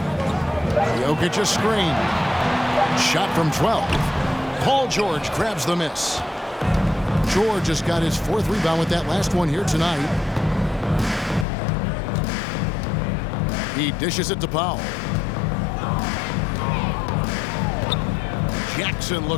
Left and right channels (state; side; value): drops out; right; at 11.5 s